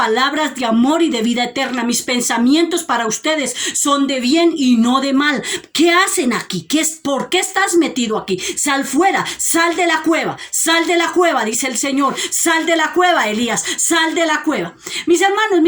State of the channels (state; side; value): identical; both; correlation 1.00